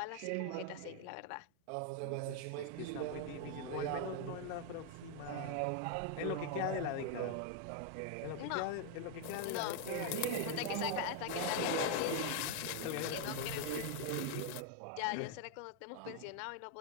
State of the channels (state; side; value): different; both; correlation 0.00